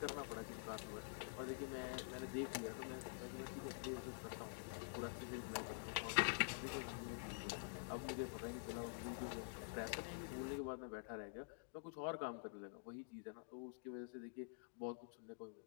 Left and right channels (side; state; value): right; silent; digital silence